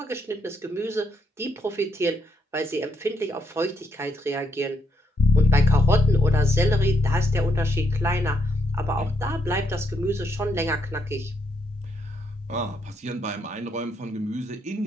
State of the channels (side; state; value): both; normal; correlation 0.76